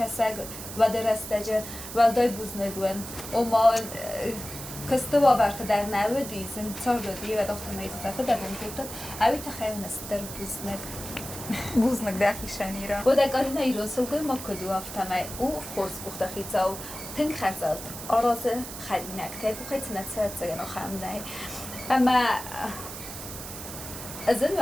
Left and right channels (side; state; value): right; noise; hiss, 10 dB below the sound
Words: وده رستجه ولدای بوز نگون و ما کسته باورت در نودی زن چار دادی و داخت میزه فده بوند کردن اوی تخیل نستر بوز نگ بوزنک داخیشانی را و در گارینا ایران سلگوی ما کدو افتمه او خورس بخته خیزا و تنگ خرزاد آراز خرینک تیگو خیلی نتسرد زگن و خمنه اما از این